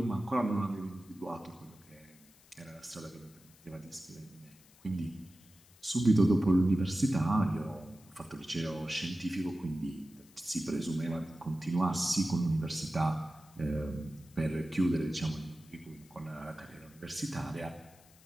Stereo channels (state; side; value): noise; left; hiss, 26 dB below the sound